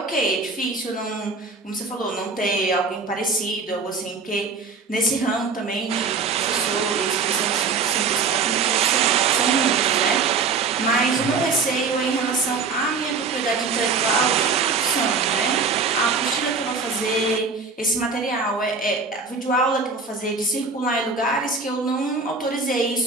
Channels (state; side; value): quieter; left; 4.6 dB